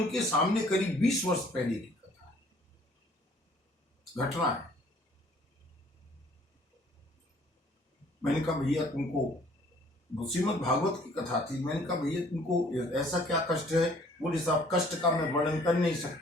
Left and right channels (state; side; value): normal; both; correlation 0.57